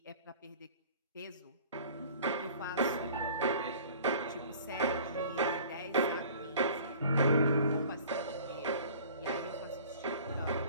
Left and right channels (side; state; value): both; inverted; correlation -0.47